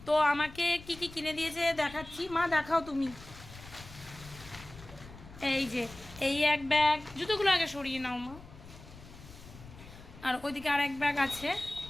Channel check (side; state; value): left; noise; rumble, 18 dB below the sound